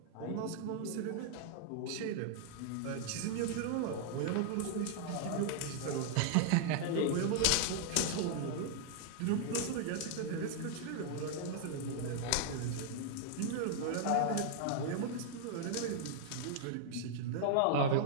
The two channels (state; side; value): different; both; correlation 0.00